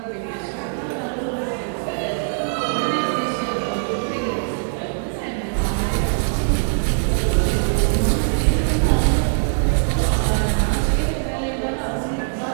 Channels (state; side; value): silent; left; digital silence